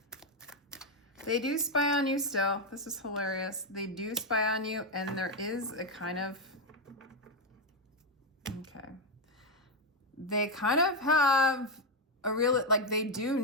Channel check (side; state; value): both; normal; correlation 0.05